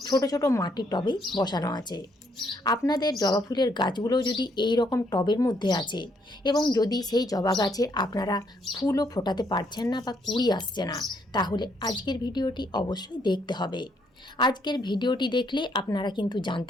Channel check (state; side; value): normal; both; correlation 0.71